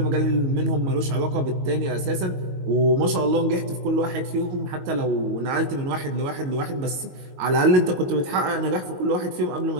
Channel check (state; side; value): late; left; 22 ms